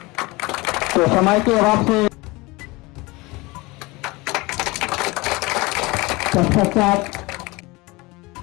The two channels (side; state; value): right; quieter; 23.4 dB